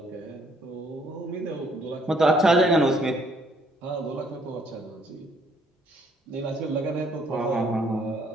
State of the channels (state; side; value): normal; both; correlation 0.66